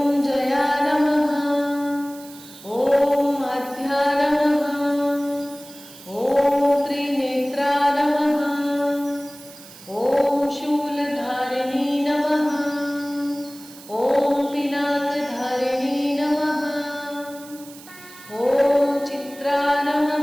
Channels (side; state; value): right; noise; hiss, 19 dB below the sound